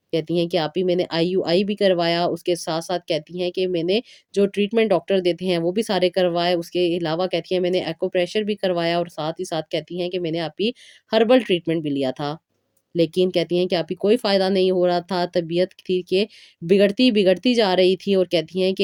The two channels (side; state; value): both; identical; correlation 1.00